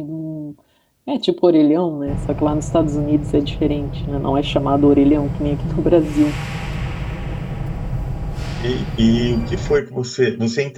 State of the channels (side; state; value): both; identical; correlation 1.00